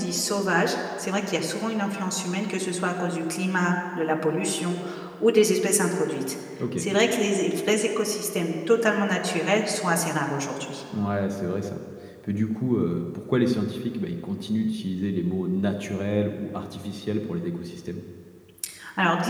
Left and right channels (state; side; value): identical; both; correlation 1.00